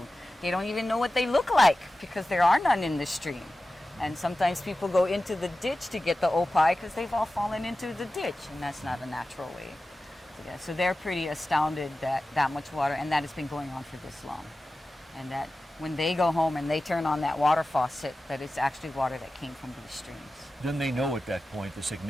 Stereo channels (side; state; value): both; normal; correlation 0.95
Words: they don't even know what they look like because there are none in the stream. And sometimes people go into the ditch to get the opai because they've all fallen into the ditch, and that's not a natural way. So they're pretty astounded that much water, and that has been going on for this long. And that when they go home and they turn on that water faucet, that it's actually water that came from these streams. Then they know at that point the